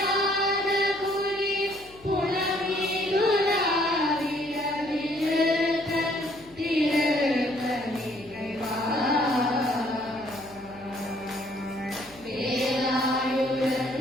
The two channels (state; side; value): noise; left; hum, 24 dB below the sound